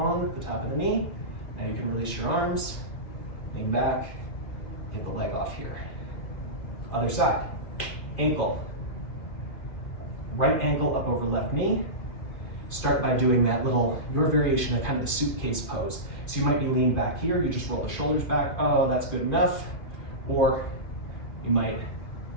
the top of the knee. Now you can release your arms, lean back, get the leg off here. Other side. Ankle. Right ankle up over left knee. Start by doing that little, your variation of kind of the suitcase pose. So you might be leaned back here, you just roll the shoulders back. Oh, that's good enough. Or you might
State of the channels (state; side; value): late; right; 2.6 ms